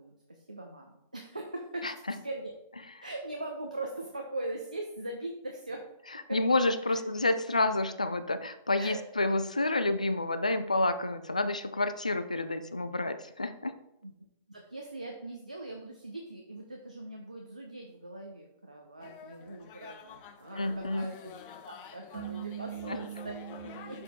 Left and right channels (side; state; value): both; inverted; correlation -0.76